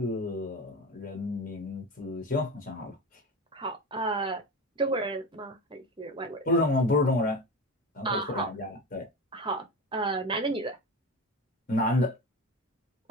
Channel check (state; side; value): normal; both; correlation 0.26